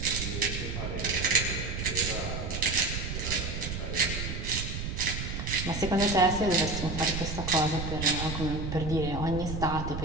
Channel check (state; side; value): noise; right; rumble, 4 dB below the sound